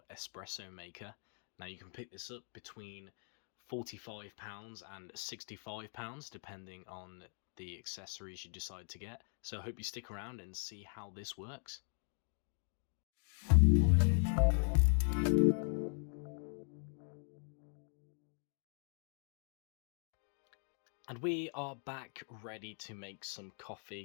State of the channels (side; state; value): right; silent; 51 dB below the other